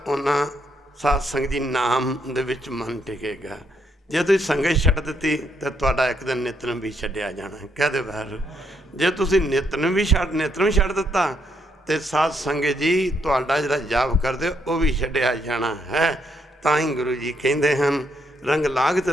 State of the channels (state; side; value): normal; both; correlation 0.74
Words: ਉਹਨਾਂ ਸਾਧ ਸੰਗਤ ਜੀ ਨਾਮ ਦੇ ਵਿੱਚ ਮਨ ਟਿਕੇਗਾ। ਜੇ ਤੁਸੀਂ ਸੰਗਤ ਛੱਡ ਦਿੱਤੀ ਤਾਂ ਤੁਹਾਡਾ ਇੱਕ ਦਿਨ ਨਿਤਨੇਮ ਵੀ ਛੱਡਿਆ ਜਾਣਾ। ਕਹਦੇ ਬਾਹਰ ਜੇ ਤੁਸੀਂ ਨਿਤਨੇਮ ਛੱਡ ਦਿੱਤਾ ਤੇ ਸਾਧ ਸੰਗਤ ਜੀ ਤੁਹਾਡਾ ਜਿਹੜਾ ਜਾਪ ਕਰਦੇ ਉਹ ਵੀ ਛੱਡਿਆ ਜਾਣਾ ਹੈ। ਤਾਂ ਹੀ ਗੁਰੂ ਜੀ ਕਹਿੰਦੇ ਹਨ ਰੰਗ ਲਾਗਤ